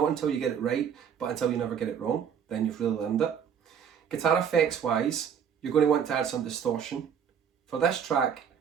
until you get it right, but until you never get it wrong, then you've really learned it. Guitar effects wise, you're going to want to add some distortion. For this track,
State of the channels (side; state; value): left; quieter; 7.8 dB